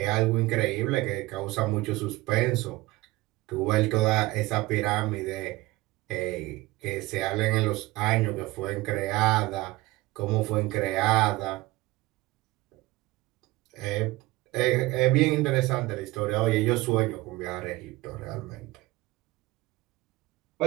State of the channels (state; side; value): quieter; left; 19.9 dB